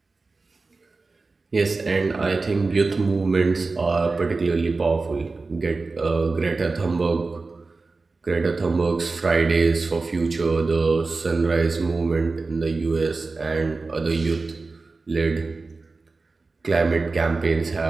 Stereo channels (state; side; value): quieter; left; 3.8 dB